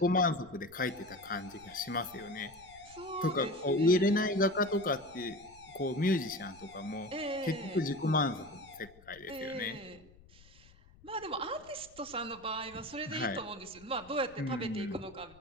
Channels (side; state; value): left; noise; rumble, 25 dB below the sound